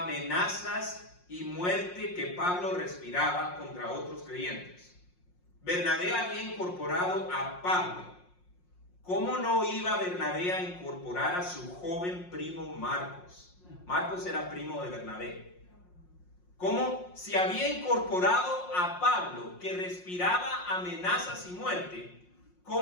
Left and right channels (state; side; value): late; right; 5.6 ms